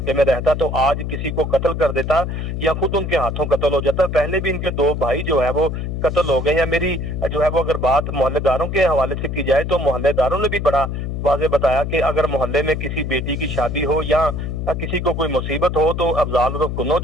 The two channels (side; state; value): left; noise; hum, 4 dB below the sound